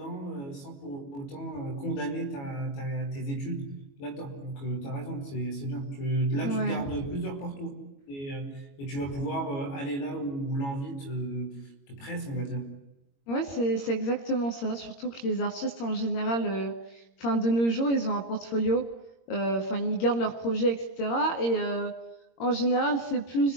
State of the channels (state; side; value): late; right; 22 ms